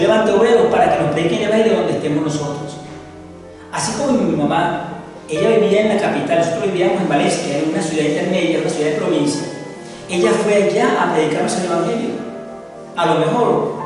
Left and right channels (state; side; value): identical; both; correlation 1.00